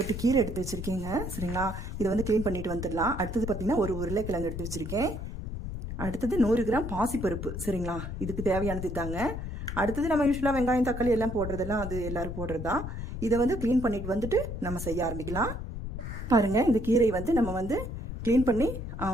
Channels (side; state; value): left; noise; rumble, 6 dB below the sound